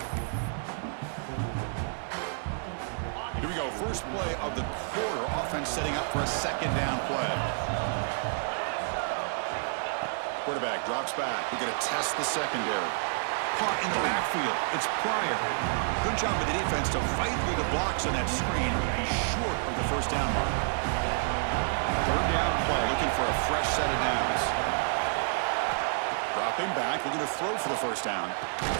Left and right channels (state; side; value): silent; left; 58 dB below the other